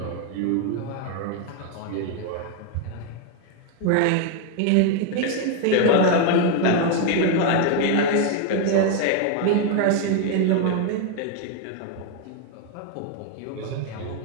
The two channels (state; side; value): different; both; correlation 0.01